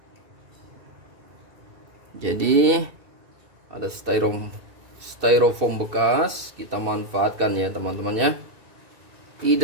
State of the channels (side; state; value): left; late; 2.6 ms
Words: Jadi ada styrofoam bekas, kita manfaatkan ya teman-teman ya.